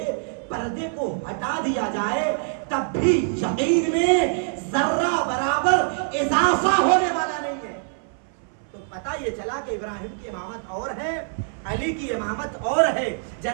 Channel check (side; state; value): left; silent; 59 dB below the other